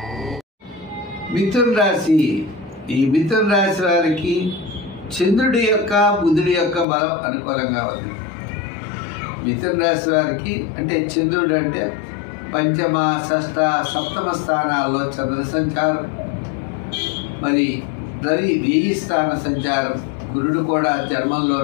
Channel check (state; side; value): drops out; right; at 6.9 s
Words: మిథున రాశి. ఈ మిథున రాశి వారికి చంద్రుడి యొక్క, బుధుడి యొక్క బలం అనుకూలంగా ఉంది. మిథున రాశి వారికి అంటే చంద్రుడు అంటే పంచమ, షష్ఠ, సప్తమ స్థానాల్లో చంద్ర సంచారం, మరి రవి 1000 స్థాన సంచారం, గురుడు కూడా